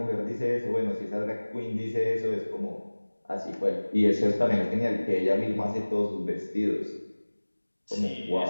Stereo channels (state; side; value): inverted; both; correlation -1.00